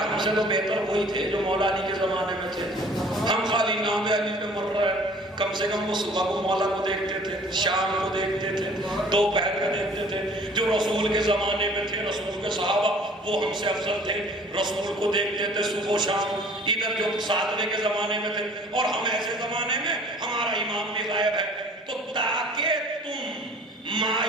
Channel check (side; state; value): both; normal; correlation 0.51